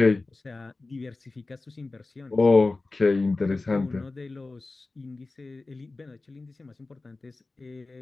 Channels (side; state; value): right; quieter; 3.4 dB